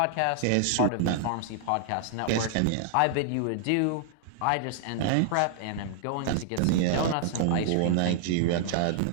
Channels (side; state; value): both; different; correlation -0.01